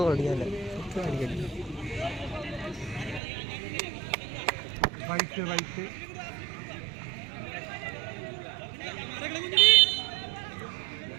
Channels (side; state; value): left; drops out; at 3.2 s